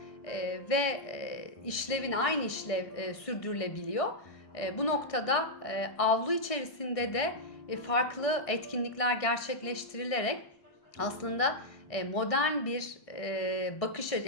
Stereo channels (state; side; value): late; right; 1.6 ms